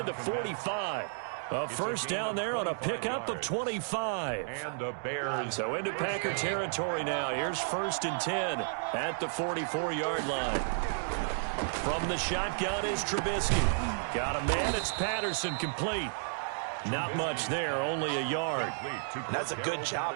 the 45. A first down there on a pickup of 25. And the Bears. So into Packer territory now. Here's 1st and 10 at the 44-yard line. From the shotgun is Trubisky. Got a man. It's Patterson, complete. Not much there, only a yard. And that's a good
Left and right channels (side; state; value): left; silent; digital silence